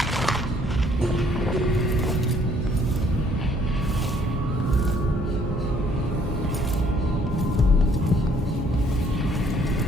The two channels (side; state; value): both; normal; correlation 0.63